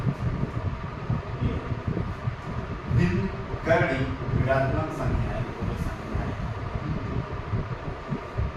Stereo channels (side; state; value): both; identical; correlation 1.00